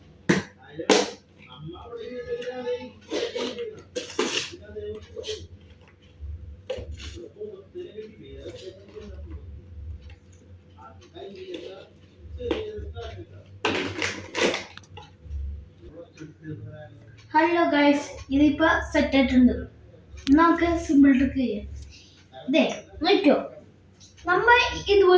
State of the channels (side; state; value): both; identical; correlation 1.00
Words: ഹലോ ഗൈസ്, ഇതിപ്പോ സെറ്റ് ആയിട്ടുണ്ട്. നമുക്ക് സിമ്പിൾ ട്രിക്ക് ചെയ്യാം. ഇതേ നോക്കിയോ, നമ്മൾ